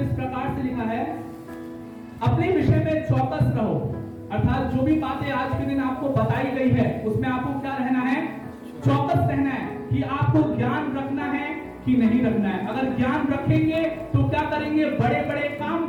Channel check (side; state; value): both; identical; correlation 1.00